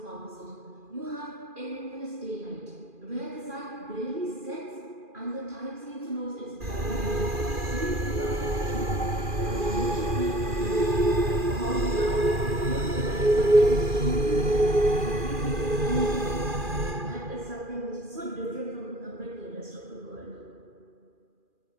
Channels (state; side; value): late; left; 2.4 ms